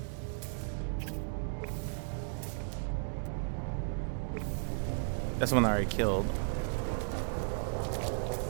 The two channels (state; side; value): silent; left; digital silence